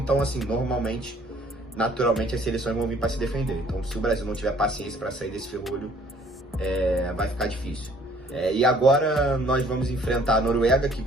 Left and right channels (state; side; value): normal; both; correlation 0.58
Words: assim, naturalmente as seleções vão vir para se defender. Então, se o Brasil não tiver paciência para sair desse ferrolho, vai ficar difícil. E agora nós vamos enfrentar a Noruega, que